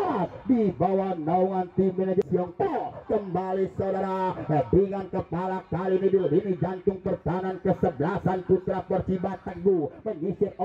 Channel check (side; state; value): both; identical; correlation 1.00